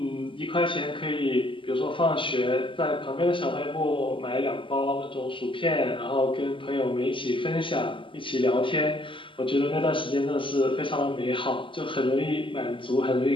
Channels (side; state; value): right; late; 0.25 ms